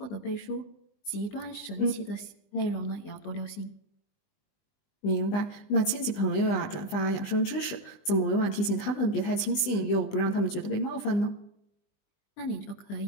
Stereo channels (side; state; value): right; late; 20 ms